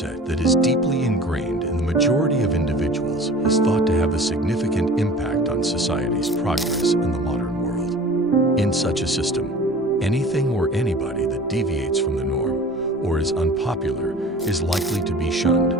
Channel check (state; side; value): normal; both; correlation 0.41